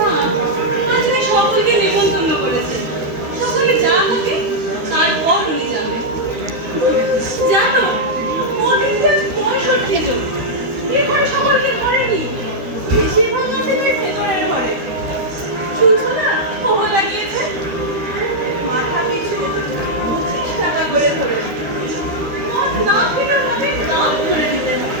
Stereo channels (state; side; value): late; left; 13 ms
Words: আজকে সকলকে নিমন্ত্রণ করেছে। সকলে যা হবে তারপর উনি যাবেন। জানো, মোদিনটা 65 জন। এখানে সকলকে ঘরে নি। বেশিরভাগ আছে তাই ভেতরের ঘরে। শুনছো না, খোয়া লাগিয়েছে। মাথা পিছু 25 টাকা করে ধরেছে। মদ না খেলে মদের দাম ধরে দিতে